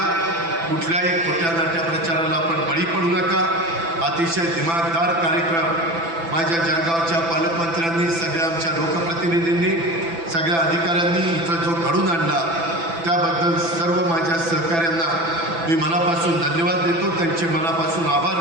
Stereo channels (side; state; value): left; late; 6.0 ms